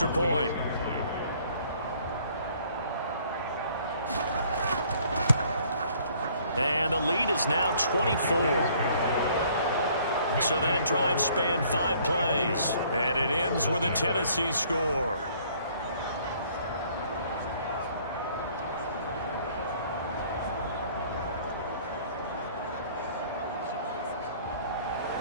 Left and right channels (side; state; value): both; inverted; correlation -0.59